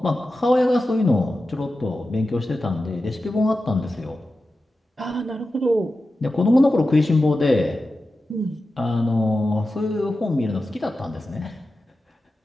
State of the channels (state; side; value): normal; both; correlation 0.93